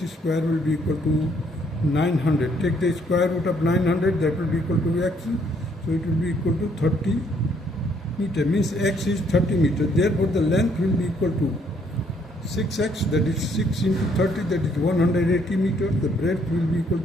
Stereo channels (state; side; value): normal; both; correlation 0.67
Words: square will be equal to 900. Take the square root of 900, that will be equal to x, so it will be equal to 30 meter, means x is 30 meter. Therefore the length will be equal to 6x, that is 6 into 30, that is 180 meters. The breadth will be equal